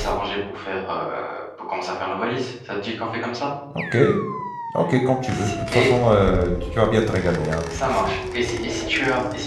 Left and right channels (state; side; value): identical; both; correlation 1.00